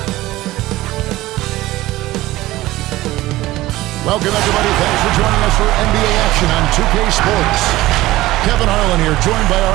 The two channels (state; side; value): quieter; left; 17.3 dB